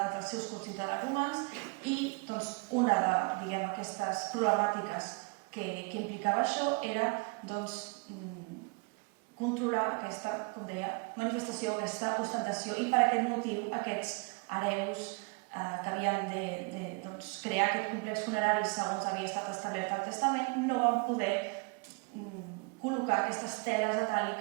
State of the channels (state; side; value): quieter; left; 32.1 dB